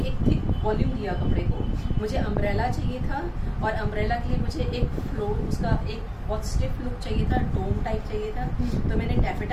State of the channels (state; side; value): identical; both; correlation 1.00